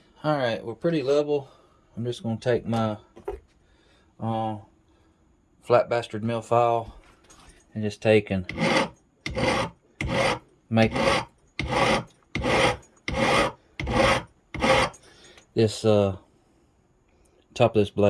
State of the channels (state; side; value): identical; both; correlation 1.00